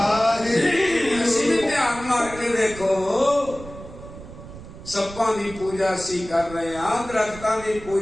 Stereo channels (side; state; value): right; noise; rumble, 15 dB below the sound